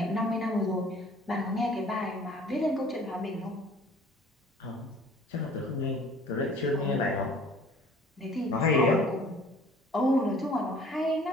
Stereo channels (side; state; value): both; normal; correlation 0.52